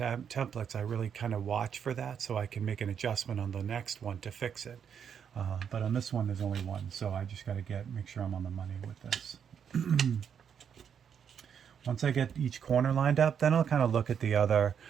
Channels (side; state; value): left; quieter; 7.8 dB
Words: I really kind of watch for that so I can make an adjustment on the next one to fix it. But on this one, there's only one, so I just got to make sure I'm on the money with this. Once I get each corner lined up, then I'll kind of look at the other,